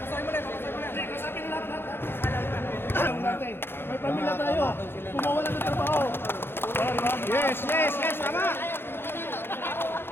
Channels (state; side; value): late; right; 0.11 ms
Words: May pamilya tayo. Kumawalan ng trabaho. Yes, yes, yes, tama.